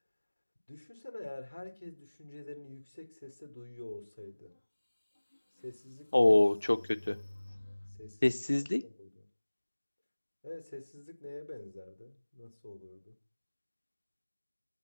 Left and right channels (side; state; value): both; inverted; correlation -1.00